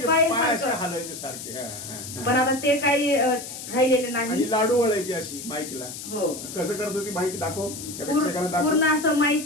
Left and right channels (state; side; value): noise; left; hiss, 10 dB below the sound